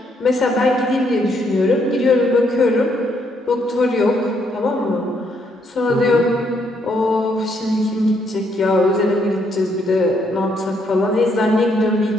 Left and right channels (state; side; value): normal; both; correlation 0.73